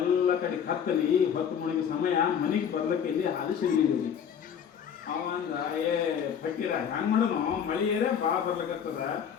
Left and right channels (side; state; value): right; quieter; 8.0 dB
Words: ಕಡೆ ಕತ್ತಲಿ, ಹೊತ್ತು ಮುಳುಗಿ ಸಮಯ. ಮನೆಗೆ ಬರ್ಲಿಕ್ಕೆ ಇಲ್ಲಿ ಹಾದಿಸಿದ್ರಿ. ಅವಂದ ಫಕೀರ ಹೆಂಗ್ ಮಾಡೋನು, ಮಳೆ ಏರೇ ಭಾಳ ಬರ್ಲಿಕ್ಕತ್ತದ,